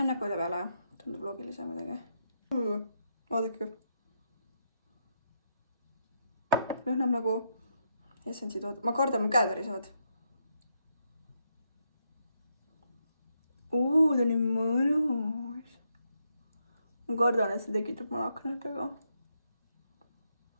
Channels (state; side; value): inverted; both; correlation -0.79